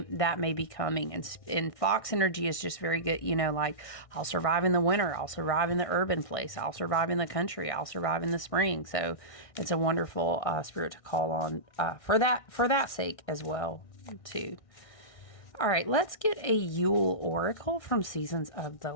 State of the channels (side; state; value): right; late; 1.6 ms